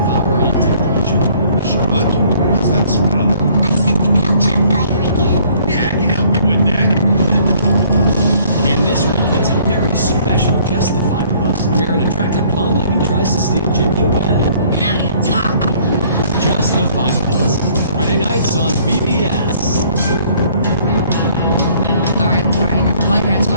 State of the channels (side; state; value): both; inverted; correlation -0.59